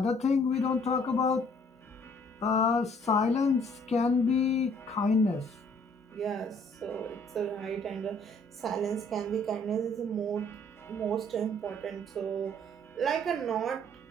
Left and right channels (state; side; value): normal; both; correlation 0.60